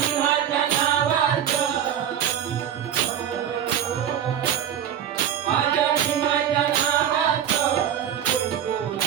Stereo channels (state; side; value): quieter; left; 9.6 dB